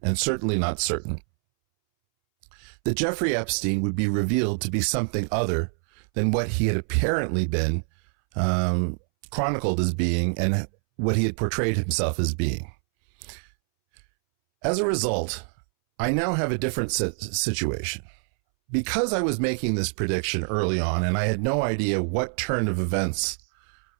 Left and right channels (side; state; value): left; silent; 61 dB below the other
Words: and certainly not certain, that Jeffrey Epstein would be revealed to be something other than what he had apparently been chronicled as being and what he had portrayed himself as being. As a result, I now have a different situation. Because I was making this prediction early on and I had no idea what turn of events